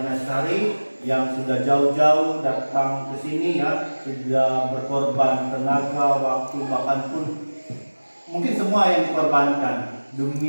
Sari yang sudah jauh-jauh datang ke sini ya, sudah berkorban tenaga, waktu, bahkan pun mungkin semua yang dikorbankan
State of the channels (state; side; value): inverted; both; correlation -1.00